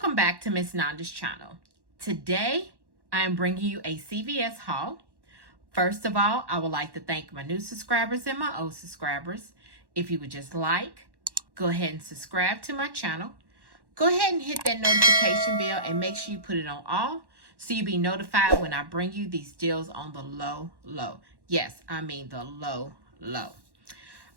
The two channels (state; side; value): late; left; 1.1 ms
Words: back to Miss Nanda's channel. Today I am bringing you a CVS haul. First of all, I would like to thank my new subscribers and my old subscribers. If you would just go ahead and subscribe to my channel. Go ahead and hit that notification bell and make sure you put it on all so you'll be notified when I bring you these deals on the low. Yes, I mean the low. All